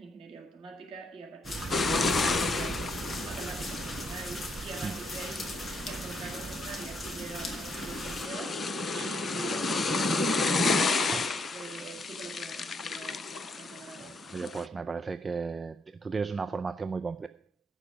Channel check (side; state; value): both; normal; correlation 0.74